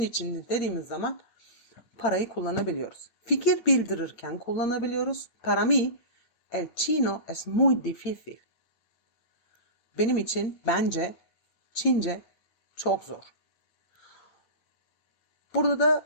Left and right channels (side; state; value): right; late; 8.8 ms